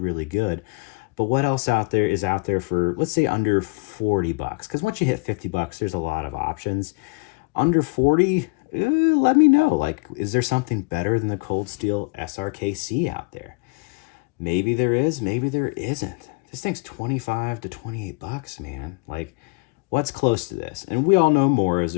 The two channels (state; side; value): quieter; right; 27.6 dB